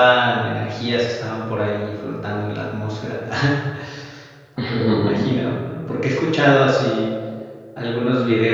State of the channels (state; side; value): identical; both; correlation 1.00